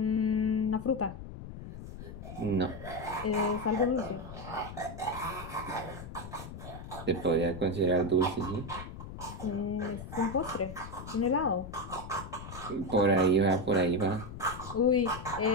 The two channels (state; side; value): noise; left; rumble, 11 dB below the sound